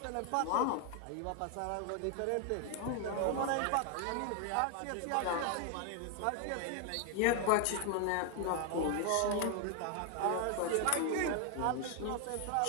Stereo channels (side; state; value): both; different; correlation 0.00